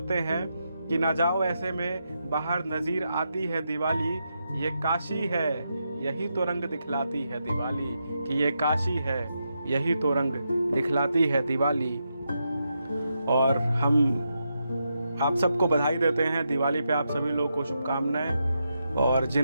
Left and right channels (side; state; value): both; inverted; correlation -0.84